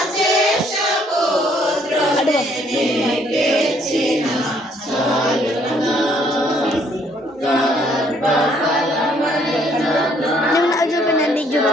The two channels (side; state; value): both; normal; correlation 0.65